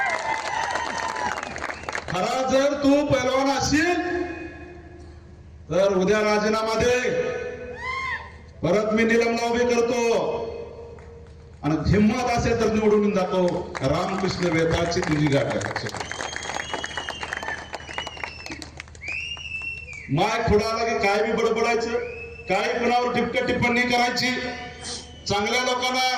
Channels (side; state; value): both; identical; correlation 1.00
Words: खरा जर तू पैलवान असशील तर उद्या राजीनामा दे. परत मी निलंबना उभी करतो. आणि हिंमत असेल तर निवडून दाखव. रामकृष्ण वेताळची तुझी गाठ आहे. माय पुढे आला की काय बी बडबडायचं, काय कुणावर टिपक्या टिप्पणी करायची, चांगल्या लोकांना